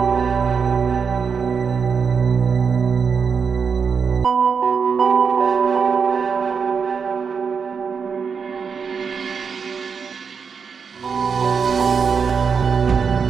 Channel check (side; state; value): left; quieter; 6.0 dB